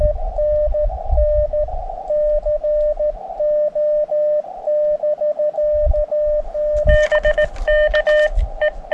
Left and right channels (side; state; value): both; identical; correlation 1.00